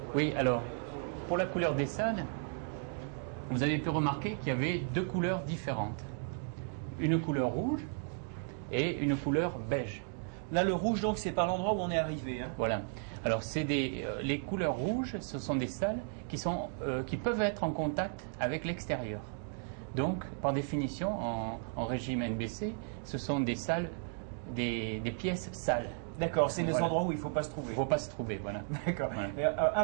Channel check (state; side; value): silent; left; 55 dB below the other